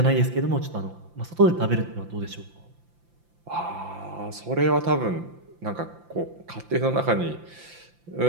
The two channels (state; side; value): late; left; 5.8 ms